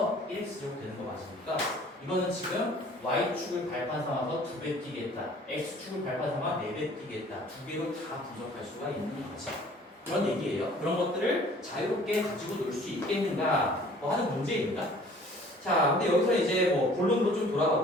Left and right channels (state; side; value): normal; both; correlation 0.52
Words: 1X 제곱 되는 거 맞으니까 이거는 지금 Y축을 발판 삼아서 2배 뛰겠다. X축을 발판 삼아 4배 뛰겠다. 2개로 다 분석할 수가 있는 거지. 그런 얘기예요. 그런 것들을 자유롭게 가지고 놀 수 있겠는가 하는 문제입니다. 자, 근데 여기서 이제 뭐 본론으로 좀 돌아가